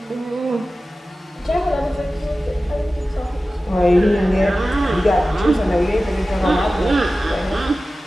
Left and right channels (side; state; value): both; normal; correlation 0.95